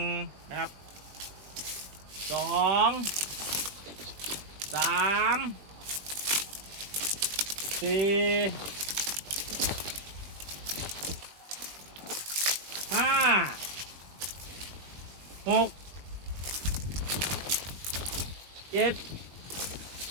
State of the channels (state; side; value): late; left; 20 ms